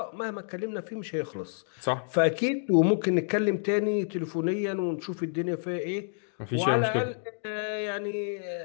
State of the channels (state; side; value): silent; right; digital silence